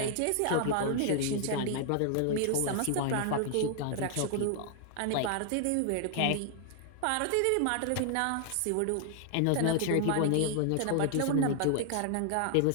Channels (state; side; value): different; both; correlation 0.00